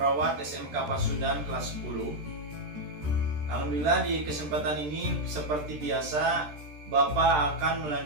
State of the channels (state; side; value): late; left; 13 ms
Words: SMK Pasundan kelas 10. Alhamdulillah di kesempatan ini seperti biasa Bapak akan